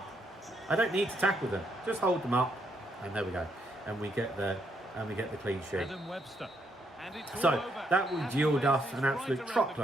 I don't need to tackle them. Just hold them up, and there we go. And we get the clean sheet. So that will yield us an absolute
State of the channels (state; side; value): normal; both; correlation 0.75